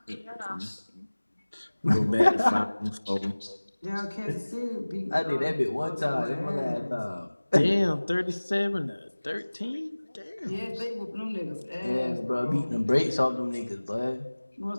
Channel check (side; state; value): both; inverted; correlation -1.00